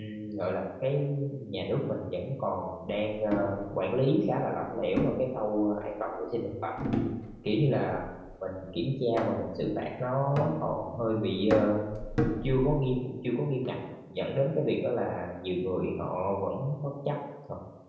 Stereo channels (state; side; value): identical; both; correlation 1.00